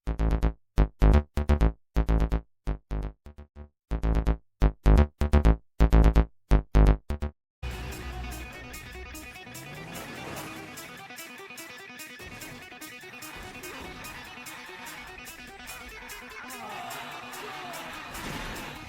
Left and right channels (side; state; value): both; identical; correlation 1.00